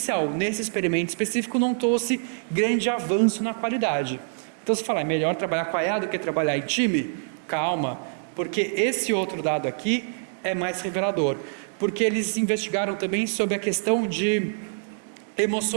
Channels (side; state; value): left; silent; digital silence